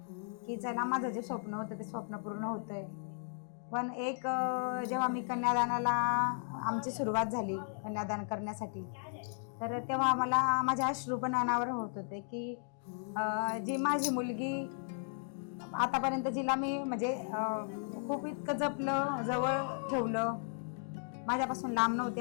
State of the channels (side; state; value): right; silent; digital silence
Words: की चला माझं जे स्वप्न होतं ते स्वप्न पूर्ण होतंय. पण एक जेव्हा मी कन्यादानाला आमची सुरुवात झाली कन्यादान करण्यासाठी, तर तेव्हा मला माझ्या अश्रू पण अनावर होत होते की जी माझी मुलगी आतापर्यंत जिला मी म्हणजे खूप इतकं जपलं, जवळ ठेवलं, माझ्यापासून लांब नव्हती.